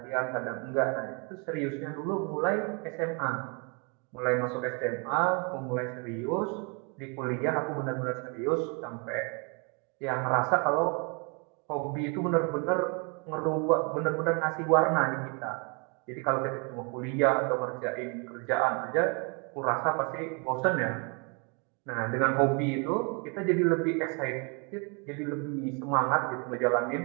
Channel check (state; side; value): quieter; left; 33.9 dB